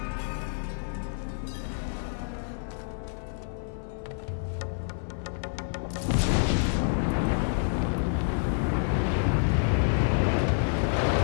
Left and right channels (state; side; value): silent; right; 59 dB below the other